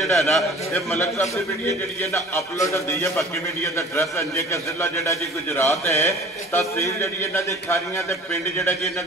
है ना ये मलक साहब की वीडियो जी है ना अपलोड होती है। बाकी वीडियो का एड्रैस अंजे के जिला जोड़ा जी गुजरात है, तहसील जी इन्हों की खारियां के पिंड जोड़ा जी इन्हों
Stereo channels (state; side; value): normal; both; correlation 0.45